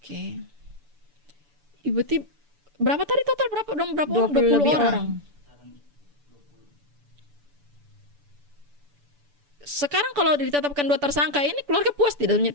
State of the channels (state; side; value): late; left; 6.9 ms